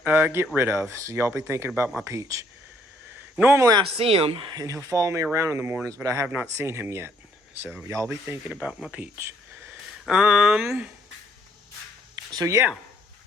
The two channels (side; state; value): both; normal; correlation 0.67